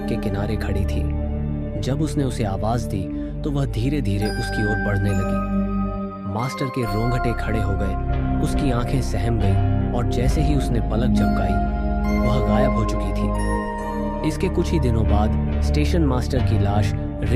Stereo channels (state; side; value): identical; both; correlation 1.00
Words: के किनारे खड़ी थी। जब उसने उसे आवाज़ दी तो वह धीरे धीरे उसकी ओर बढ़ने लगी। मास्टर के रोंगटे खड़े हो गए, उसकी आंखें सहम गईं और जैसे ही उसने पलक झपकाई वह गायब हो चुकी थी। इसके कुछ ही दिनों बाद स्टेशन मास्टर की लाश